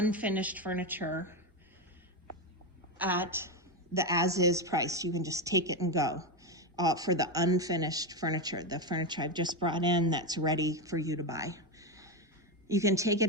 furniture at the as-is price. You can just take it and go for the unfinished furniture, the furniture I've just brought in that's ready for you to buy. You can take it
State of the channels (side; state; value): both; normal; correlation 0.11